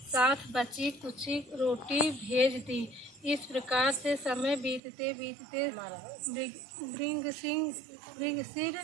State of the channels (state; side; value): drops out; left; at 4.8 s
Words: बची कुची रोटी भेज दी। इस प्रकार से समय बीतते बीतते